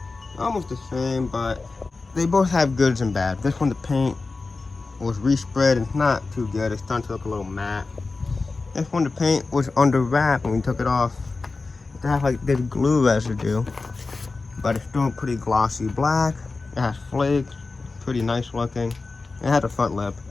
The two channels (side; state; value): right; quieter; 3.8 dB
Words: Almost the same, but they both have goods and bad. This one, the paint was respread and it's not too good. It's starting to look a little matte. This one, the paint was under wrap when we took it off. It had like this glue residue, but it's still pretty glossy black. It has flakes, pretty nice looking. It had a front lip.